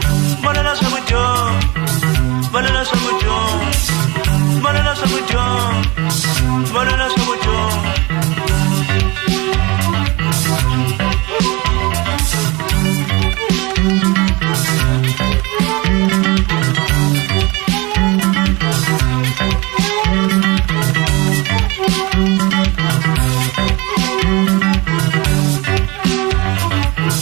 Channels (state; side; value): quieter; left; 24.8 dB